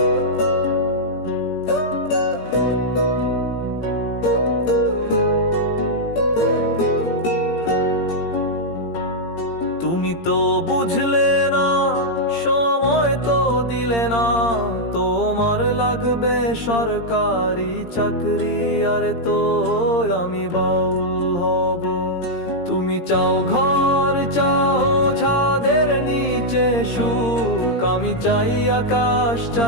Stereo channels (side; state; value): right; late; 17 ms